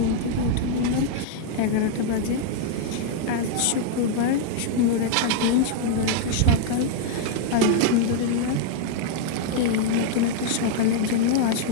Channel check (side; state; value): both; different; correlation 0.00